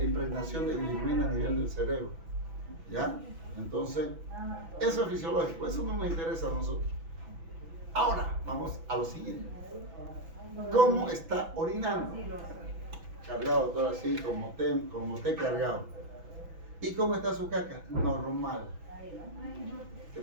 impregnación de bilirrubina a nivel del cerebro, ¿ya? Entonces, eso es fisiológico, eso no nos interesa a nosotros. Ahora, vamos a lo siguiente. ¿Cómo está orinando? Cargado todo así, como té cargado. ¿Y cómo está su caca? Normal. ¿Qué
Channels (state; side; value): late; left; 6.0 ms